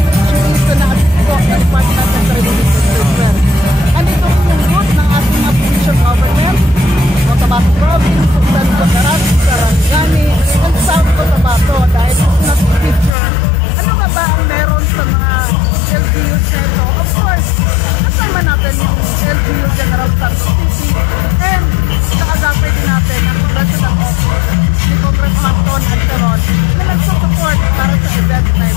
na na-assist po as part natin sa Region 12. Andito po yung group ng ating mga provincial government, Cotabato Province, Sultan Kudarat, Sarangani, and South Cotabato. Dahil ito picture, ano nga ba ang meron sa mga LGUs na ito? Of course, kasama natin yung LGU General Santos City and nakagape din natin ang Congressional Office ni Congressman Ton Anteron na nagsusupport para sa event na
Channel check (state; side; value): drops out; right; at 13.2 s